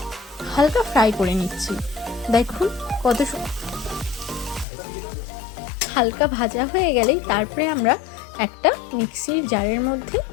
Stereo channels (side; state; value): right; drops out; at 4.7 s